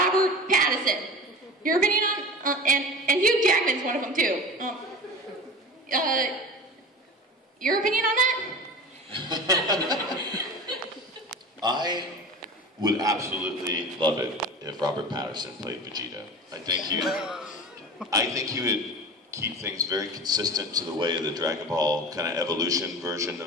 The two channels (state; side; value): normal; both; correlation 0.34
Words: Pattinson. Your opinion on and Hugh Jackman's one of them too. Your opinion on that? I would absolutely love it if Robert Pattinson played Vegeta. I think he would keep things very consistent to the way the Dragon Ball kind of evolution version